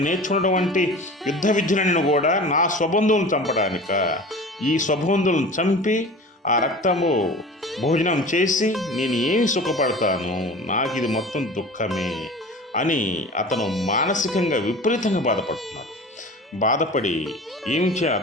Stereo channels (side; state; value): both; normal; correlation 0.37